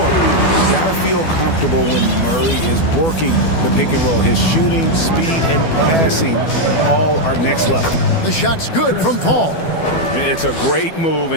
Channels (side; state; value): right; late; 12 ms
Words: got to feel comfortable when Murray is working the pick and roll. His shooting, speed, and passing all are next level. The shot's good from Paul. It's a great move,